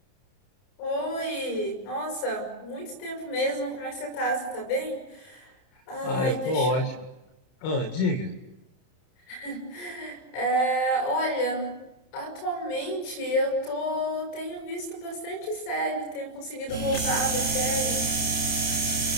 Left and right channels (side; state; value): right; late; 31 ms